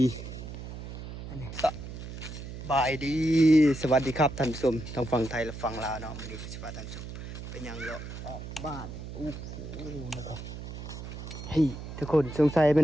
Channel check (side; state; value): right; noise; hum, 9 dB below the sound